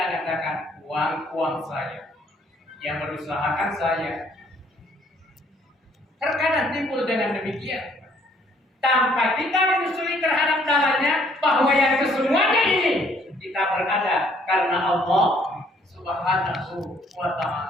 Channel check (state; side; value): normal; both; correlation 0.63